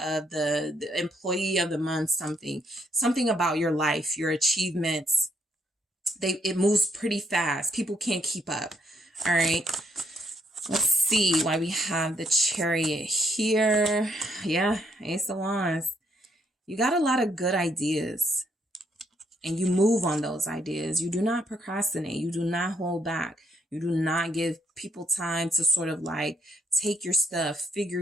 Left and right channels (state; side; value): normal; both; correlation 0.72